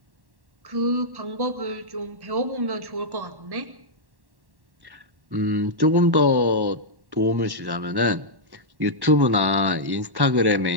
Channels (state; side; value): late; left; 1.1 ms